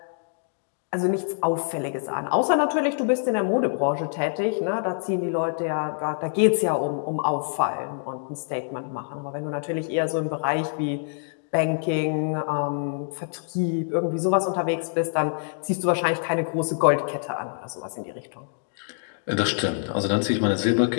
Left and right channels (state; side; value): silent; right; digital silence